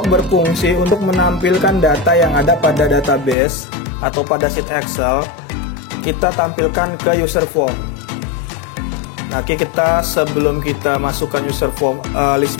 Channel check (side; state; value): right; drops out; at 3.4 s